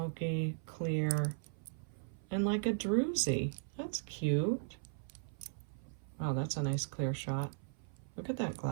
clear, and like a druzy. That's cute. Wow, that's a nice clear shot. Look at that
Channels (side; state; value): left; silent; 53 dB below the other